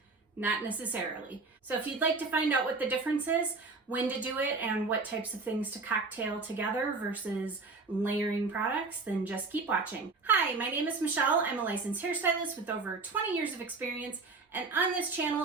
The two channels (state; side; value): quieter; left; 4.0 dB